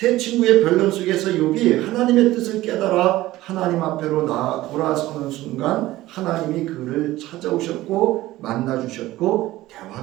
친구의 변론 속에서 욥이 하나님의 뜻을 깨달아 하나님 앞으로 돌아서는 순간 하나님이 그를 찾아오셨고 만나주셨고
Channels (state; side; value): quieter; left; 16.6 dB